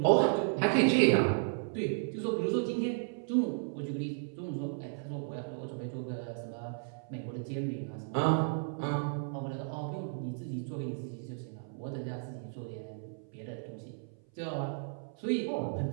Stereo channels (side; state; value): left; silent; 55 dB below the other